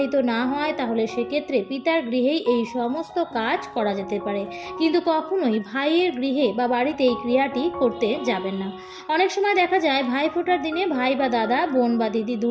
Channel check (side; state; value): both; identical; correlation 1.00